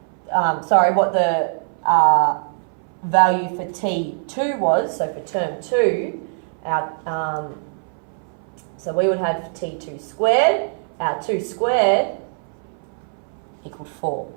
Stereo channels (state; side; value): silent; left; 61 dB below the other